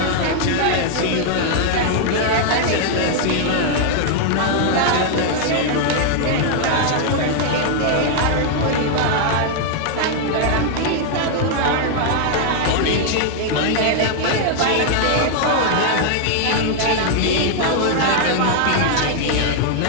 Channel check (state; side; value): different; both; correlation 0.00